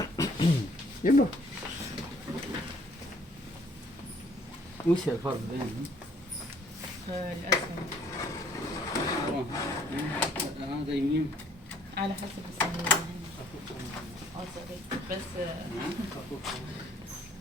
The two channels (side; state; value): both; normal; correlation 0.61